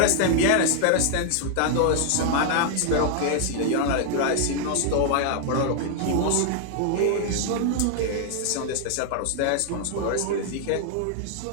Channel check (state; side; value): different; both; correlation 0.00